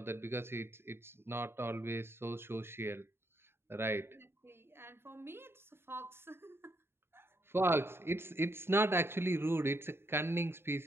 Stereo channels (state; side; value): late; left; 0.11 ms